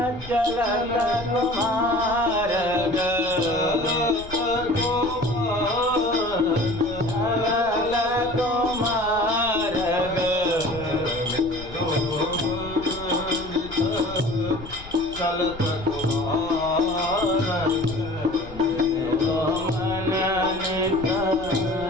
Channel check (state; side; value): noise; left; rumble, 16 dB below the sound